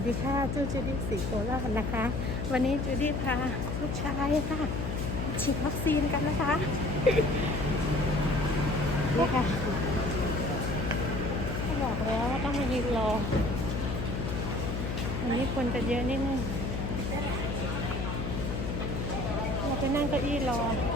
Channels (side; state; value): left; noise; hum, 2 dB below the sound